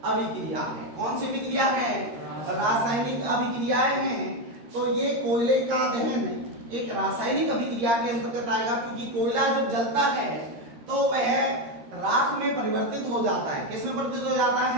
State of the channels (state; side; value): late; left; 13 ms